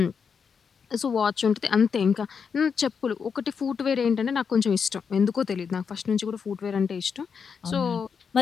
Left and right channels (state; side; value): quieter; right; 6.2 dB